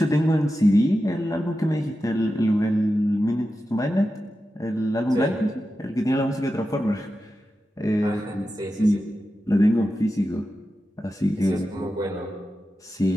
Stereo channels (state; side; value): normal; both; correlation 0.91